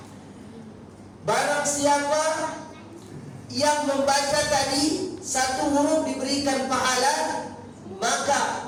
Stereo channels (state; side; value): identical; both; correlation 1.00